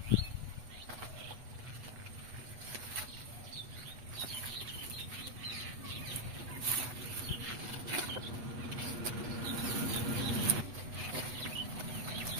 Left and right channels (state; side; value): late; left; 8.1 ms